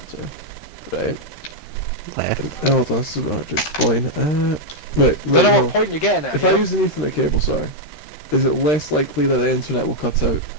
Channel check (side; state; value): right; late; 13 ms